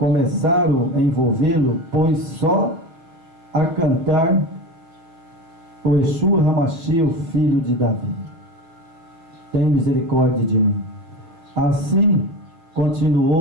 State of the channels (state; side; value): late; left; 6.1 ms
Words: a envolvê-lo, pois só a cantar o Yeshua HaMashiach, o filho de Davi. Tem misericórdia de mim. Assim